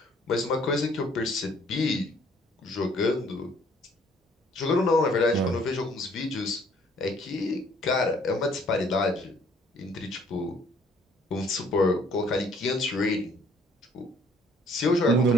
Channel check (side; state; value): both; normal; correlation 0.61